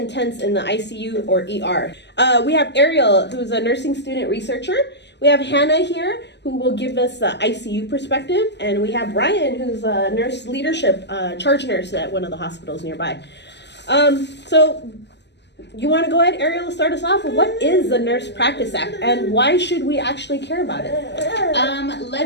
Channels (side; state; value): right; late; 0.50 ms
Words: in the ICU or ER. We have Ariel, who's a nursing student researcher. We have Hannah here, who will give us the ICU perspective. And we have Brian, who's a nurse leadership charge nurse at one of the hospitals nearby. So you want to go ahead, Ariel, start us off? What is the Nurse Practice Act and why should we actually care about it?